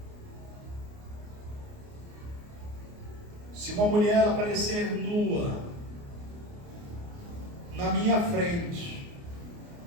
se uma mulher aparecer nua na minha frente,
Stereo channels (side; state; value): left; late; 29 ms